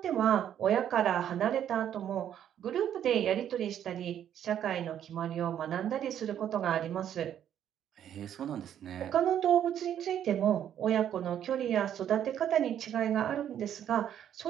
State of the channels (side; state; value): left; quieter; 10.0 dB